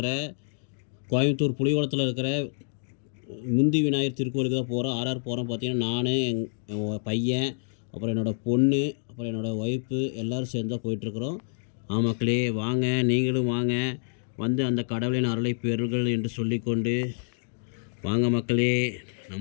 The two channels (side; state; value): right; silent; digital silence